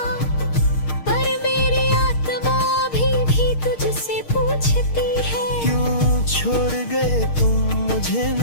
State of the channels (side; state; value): right; late; 6.5 ms